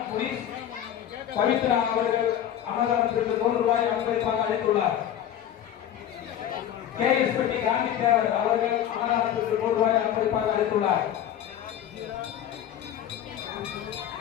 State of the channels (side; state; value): right; quieter; 10.5 dB